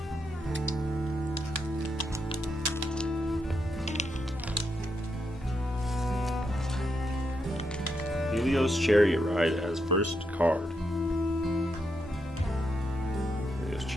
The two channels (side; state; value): both; normal; correlation 0.82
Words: Helios Chariot Ride as first card. Helios